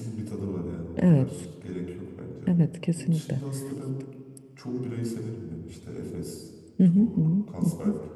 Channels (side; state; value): both; identical; correlation 1.00